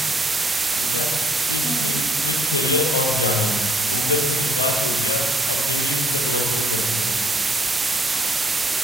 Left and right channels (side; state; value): both; normal; correlation 0.66